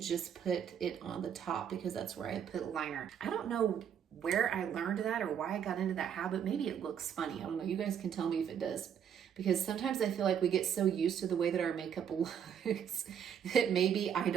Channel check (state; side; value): quieter; left; 8.5 dB